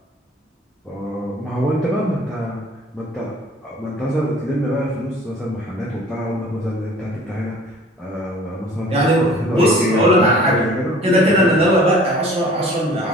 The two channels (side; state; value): both; normal; correlation 0.49